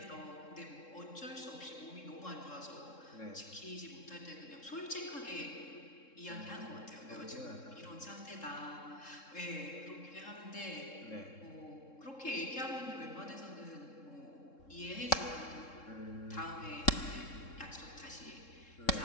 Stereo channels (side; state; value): right; late; 3.7 ms